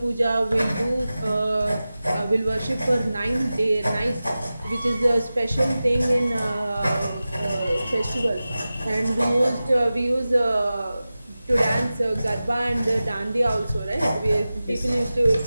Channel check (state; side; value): inverted; both; correlation -0.95